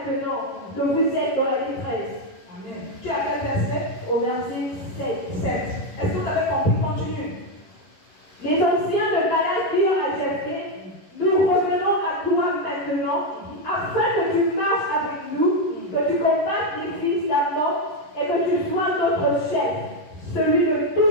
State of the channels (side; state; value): right; late; 11 ms